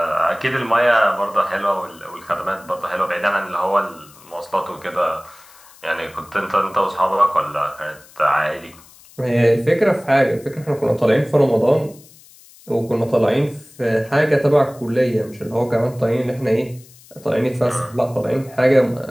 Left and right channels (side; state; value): left; noise; hiss, 24 dB below the sound